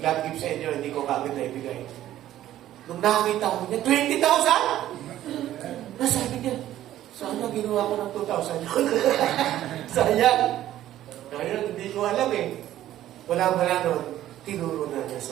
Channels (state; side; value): quieter; left; 13.1 dB